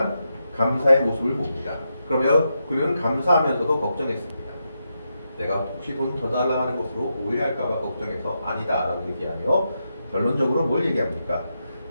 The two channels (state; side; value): inverted; both; correlation -0.85